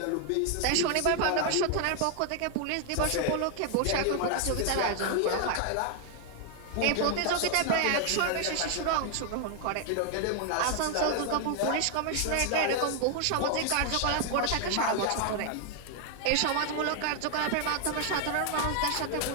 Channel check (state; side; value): different; both; correlation 0.00